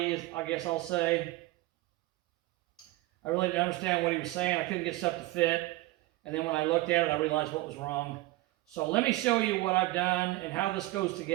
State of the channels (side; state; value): left; quieter; 19.0 dB